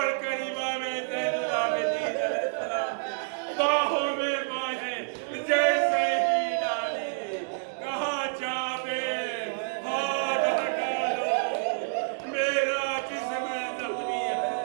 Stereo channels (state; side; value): silent; left; digital silence